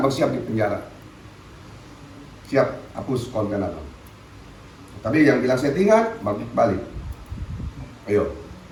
siap di penjara, siap hapus konten abang. Tapi yang bilang settingan, balik, ayo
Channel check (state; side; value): identical; both; correlation 1.00